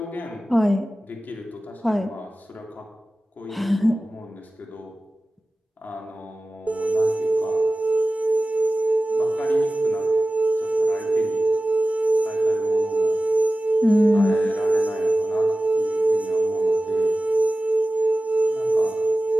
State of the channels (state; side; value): normal; both; correlation 0.96